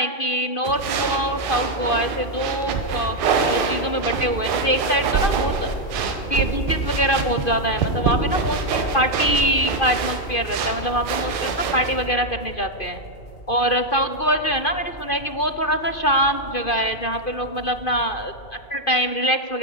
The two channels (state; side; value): late; right; 2.5 ms